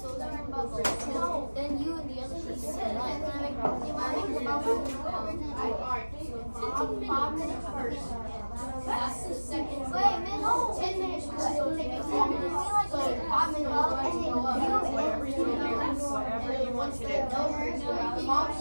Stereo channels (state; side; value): inverted; both; correlation -1.00